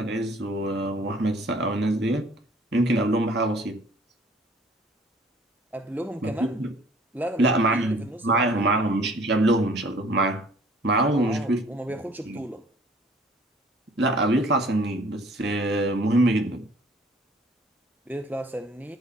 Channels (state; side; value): normal; both; correlation 0.54